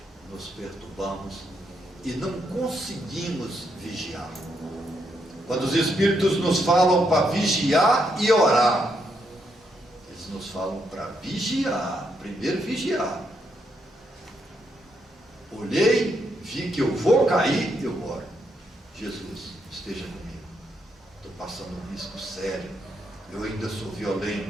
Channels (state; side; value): normal; both; correlation 0.78